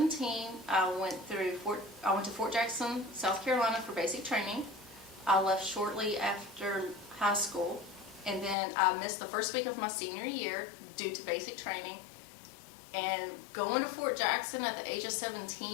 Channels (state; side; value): drops out; right; at 8.6 s